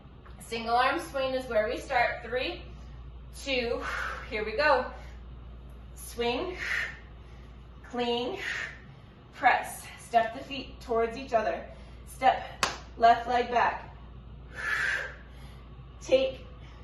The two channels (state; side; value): identical; both; correlation 1.00